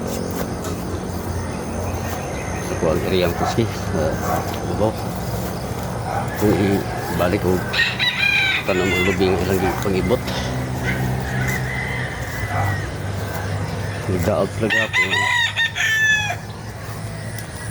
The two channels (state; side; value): identical; both; correlation 1.00